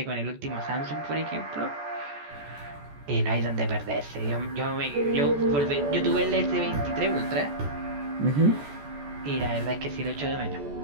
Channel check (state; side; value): late; left; 14 ms